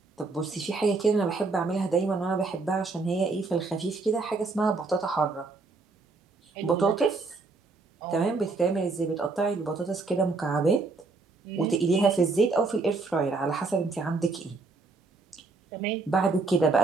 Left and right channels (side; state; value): left; quieter; 3.8 dB